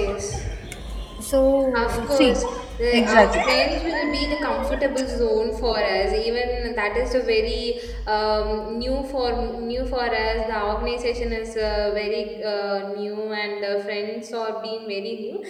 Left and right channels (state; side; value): identical; both; correlation 1.00